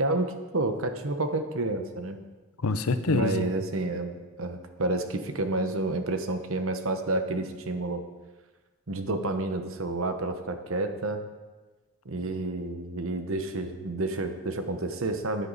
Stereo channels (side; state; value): both; normal; correlation 0.09